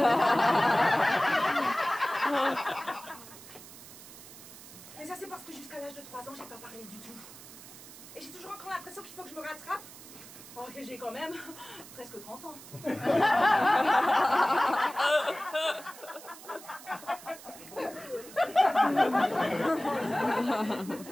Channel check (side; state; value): right; noise; hiss, 17 dB below the sound